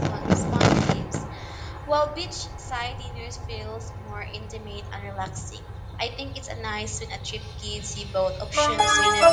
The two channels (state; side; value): identical; both; correlation 1.00